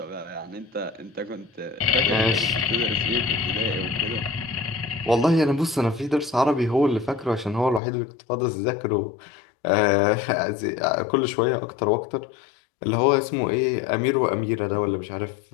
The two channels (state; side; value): drops out; right; at 7.8 s